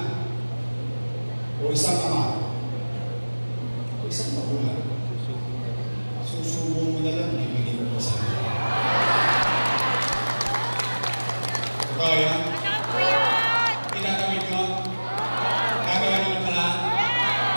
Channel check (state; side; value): inverted; both; correlation -1.00